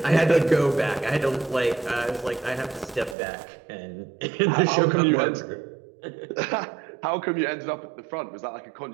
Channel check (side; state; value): left; drops out; at 3.2 s